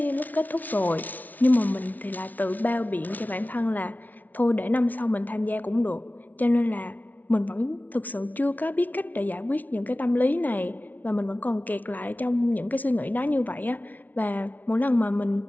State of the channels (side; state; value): right; late; 0.078 ms